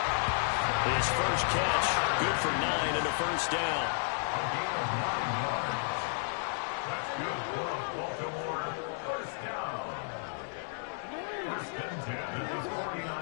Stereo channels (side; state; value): right; silent; 56 dB below the other